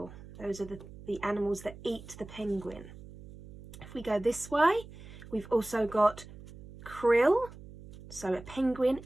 Those are the animals that eat the penguin. If we go this way, we've also got krill. So a penguin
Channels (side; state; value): right; noise; hum, 17 dB below the sound